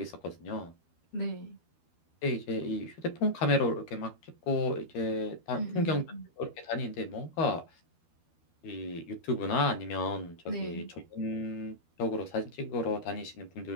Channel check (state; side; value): late; right; 12 ms